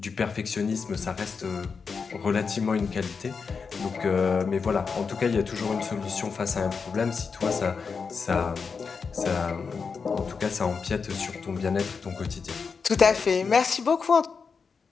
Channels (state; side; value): quieter; right; 5.4 dB